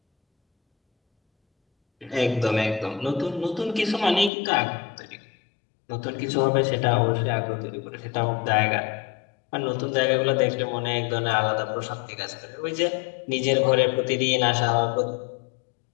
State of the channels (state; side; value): drops out; right; at 4.3 s